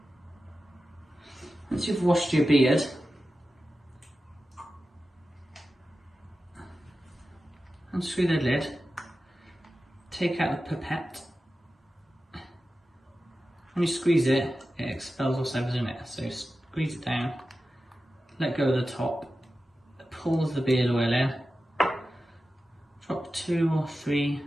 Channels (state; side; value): normal; both; correlation 0.93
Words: Once you've washed your beard, unscrew the lid, take out the pipette. When you squeeze it, it expels whatever's in it. So squeeze it down, let go of the top, it pulls the beard oil in. Drop 2 or 3